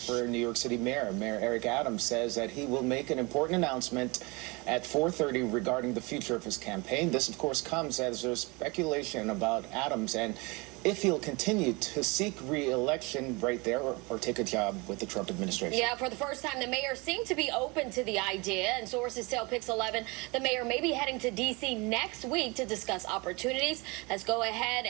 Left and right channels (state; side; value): quieter; left; 26.7 dB